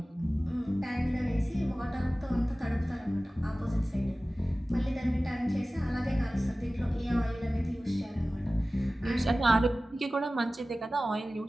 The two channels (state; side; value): normal; both; correlation 0.97